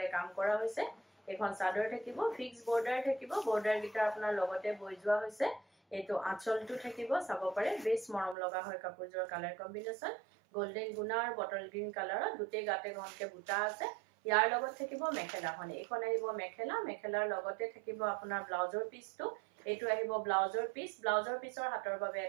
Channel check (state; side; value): drops out; left; at 8.3 s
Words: কাম কৰা হৈছে এখন চাদৰ থাকিব ফিক্স বৰ্ডাৰ থাকিব বৰ্ডাৰ গিটা আপোনাৰ লগতে বৈ যোৱা হৈছে এটো আঁচলটো থাকিব চাব পাৰে বেছ মৰম লগা হয় কাপোৰযোৰ কালাৰ কম্বিনেশন গোল্ডেন গুনা আৰু বটল গ্ৰীন কালাৰৰ দুটে গাতে ঘনকে বুটা আছে ইয়াৰ লগত থাকিব মেখেলাখন এখন আহিব মেখেলা মেখেলাৰ লগতে থাকিব আপোনাৰ ব্লাউজৰ পিসটো এটো আহিব ব্লাউজৰ পিসৰ হাতৰ বাবে